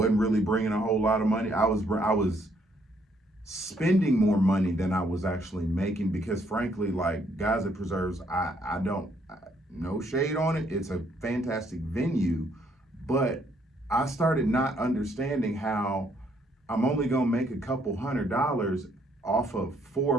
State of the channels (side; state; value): both; normal; correlation 0.69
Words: really bringing a whole lot of money? I was spending more money than I was actually making, because frankly, like, guys at preserves, no shade on it, it's a fantastic venue, but I started not understanding how I'm only gonna make a couple $100 off of 4